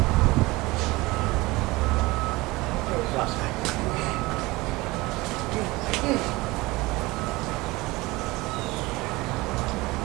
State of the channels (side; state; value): left; quieter; 21.7 dB